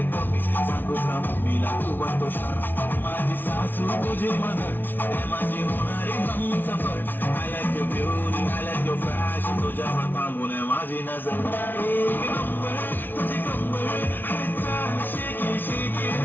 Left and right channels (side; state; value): right; late; 0.094 ms